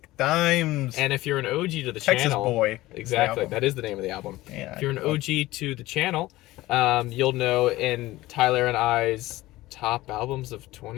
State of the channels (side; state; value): right; quieter; 17.8 dB